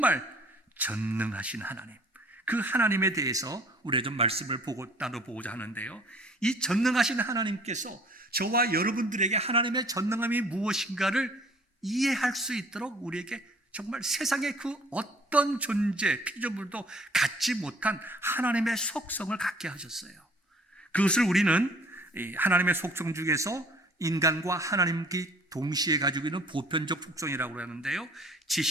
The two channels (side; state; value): both; normal; correlation 0.54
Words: 전능하신 하나님, 그 하나님에 대해서 우리가 좀 말씀을 나눠보고자 하는데요, 이 전능하신 하나님께서 저와 여러분들에게 하나님의 전능함이 무엇인가를 이해할 수 있도록 우리에게 정말 세상의 그 어떤 존재, 피조물도 갖지 못한 하나님의 속성을 갖게 하셨어요. 그것을 우리는 하나님의 속성 중에서 인간과 하나님께 동시에 가지고 있는 보편적 속성이라고 하는데요,